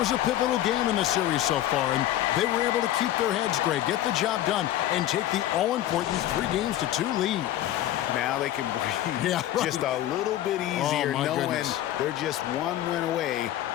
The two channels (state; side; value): quieter; right; 13.2 dB